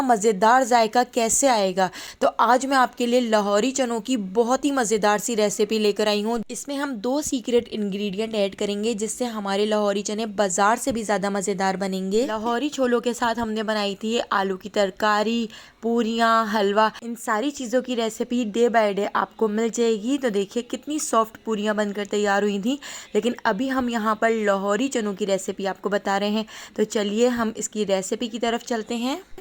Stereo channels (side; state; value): both; identical; correlation 1.00